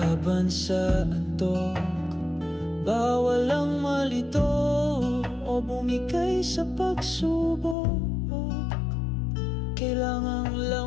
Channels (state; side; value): drops out; right; at 7.8 s